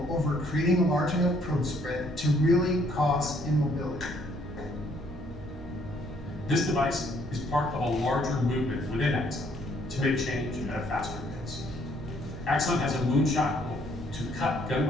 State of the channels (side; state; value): right; noise; hum, 15 dB below the sound